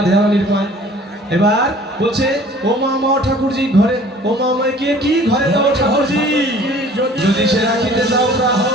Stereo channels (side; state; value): both; normal; correlation 0.50